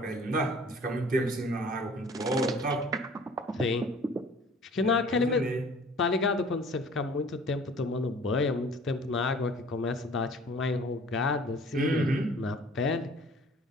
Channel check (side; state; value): both; normal; correlation 0.50